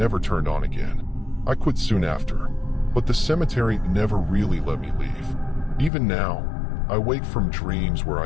turned on again. I quit soon after, but the cemetery never really let me leave. Even now, I wake from dreams where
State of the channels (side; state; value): right; drops out; at 5.9 s